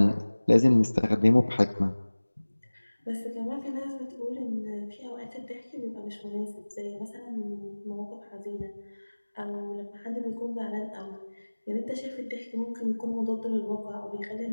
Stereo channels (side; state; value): both; inverted; correlation -1.00